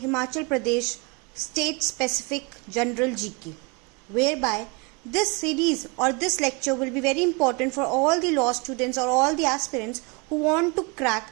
Pradesh state specific general GK, whereby this series or this lecture will be very important for all the law students or all the aspirants who want to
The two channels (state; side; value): quieter; left; 29.3 dB